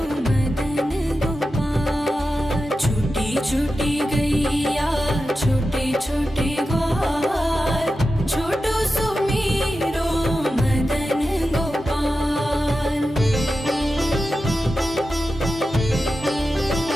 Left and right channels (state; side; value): normal; both; correlation 0.92